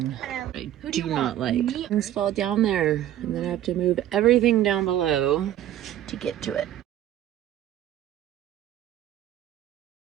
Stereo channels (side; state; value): left; quieter; 12.2 dB